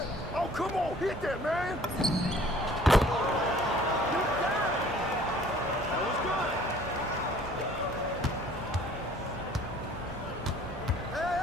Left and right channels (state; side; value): normal; both; correlation 0.53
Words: Oh, come on, hit that, man. That was good.